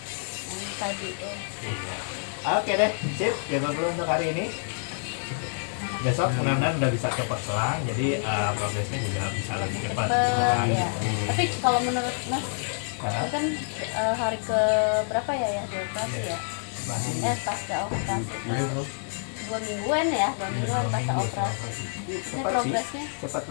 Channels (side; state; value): right; silent; digital silence